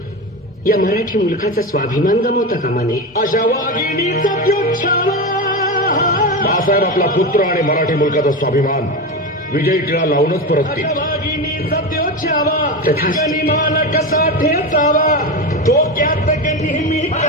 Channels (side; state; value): both; normal; correlation 0.19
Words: या मराठी मुलखाचा स्वाभिमान गमावता कामा नये. अशा वाघिणीचा प्योच्छावा. बाळासाहेब आपला पुत्र आणि मराठी मुलकाचा स्वाभिमान विजयी टिळा लावूनच परततील. वाघिणीचा प्योच्छावा, तथास्तु. गनिमान कसा ठेचावा, डोक्यात नेहमी